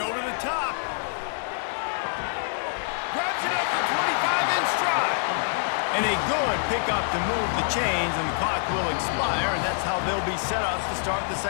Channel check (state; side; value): silent; right; digital silence